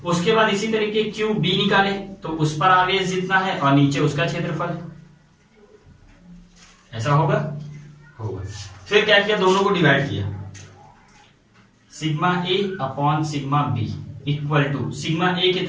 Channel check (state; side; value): identical; both; correlation 1.00